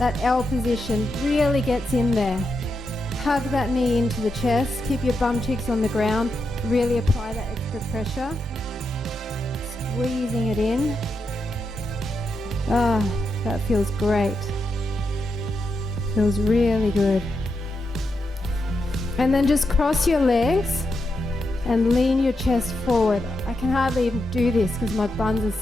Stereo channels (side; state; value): both; normal; correlation 0.85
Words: L position really gets in there. Hug that knee into the chest. Keep your bum cheeks on the ground. Really apply that extra pressure. Squeezing it in. That feels great. Feels really good. And then just cross your legs and lean your chest forward. I can hardly even do this because my buns are